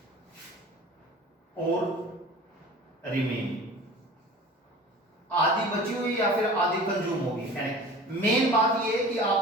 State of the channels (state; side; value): normal; both; correlation 0.41